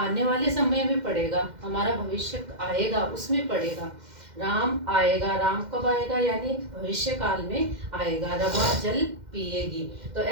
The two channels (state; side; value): late; left; 2.1 ms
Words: वाले समय में पढ़ेगा, हमारा भविष्य आएगा उसमें पढ़ेगा। राम आएगा। राम कब आएगा? यानी भविष्य काल में आएगा। रमा जल पिएगी। तो